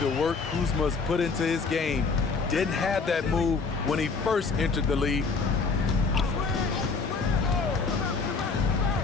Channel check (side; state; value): right; quieter; 4.6 dB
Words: work Kuzma's put into his game. Didn't have that move when he first entered the league.